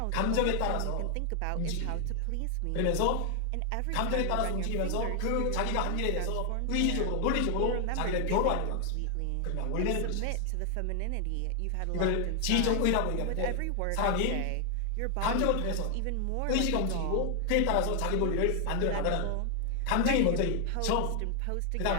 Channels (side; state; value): both; different; correlation 0.00